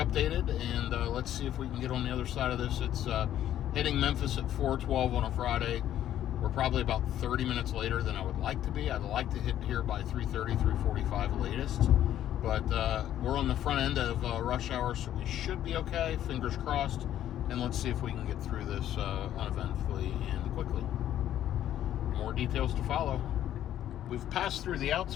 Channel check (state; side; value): quieter; right; 11.6 dB